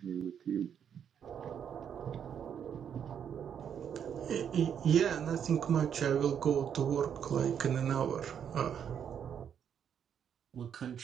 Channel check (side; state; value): left; quieter; 8.3 dB